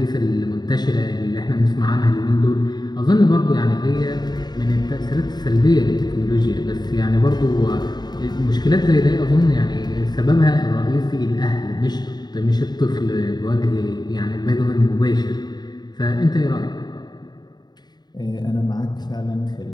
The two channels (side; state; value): right; late; 0.20 ms